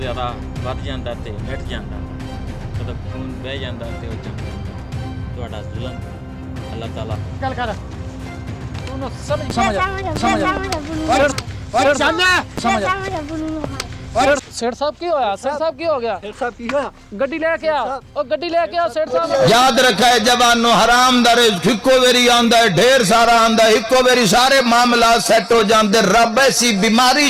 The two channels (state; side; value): identical; both; correlation 1.00